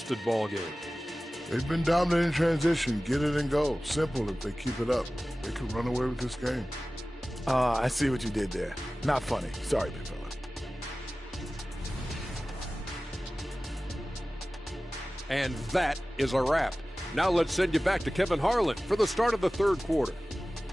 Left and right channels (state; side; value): normal; both; correlation 0.97